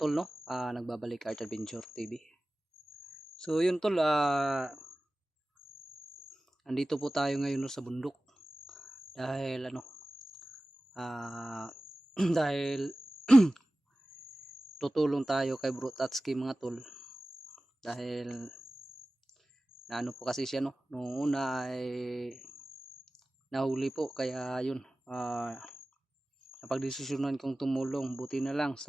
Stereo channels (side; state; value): both; normal; correlation 0.97